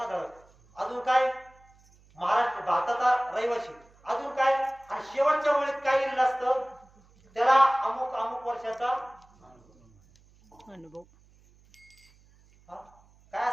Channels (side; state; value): right; noise; hum, 29 dB below the sound